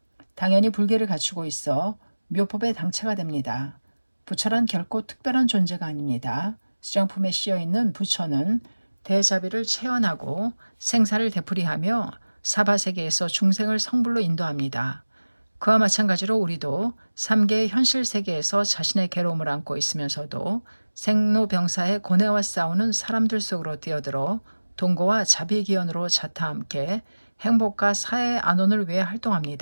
당연히 불계를 갖추고 있어 묘법의 당체가 됩니다. 부처란 결코 특별한 존재가 아닙니다. 수량품에 씌어있는 부처는 대자비를 체현하고 생사를 되풀이하며 사바세계에서 중생을 성불로 인도합니다. 그와 마찬가지로 우리도 삼계의 현실 세계에서 자신의 괴로움을 안고 있으면서도 생로병사의 고뇌와 싸우는 사람들 속으로 뛰어들어 동고와 자비기원으로 자타 함께 행복과 사회의 안온을 위해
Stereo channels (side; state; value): both; inverted; correlation -1.00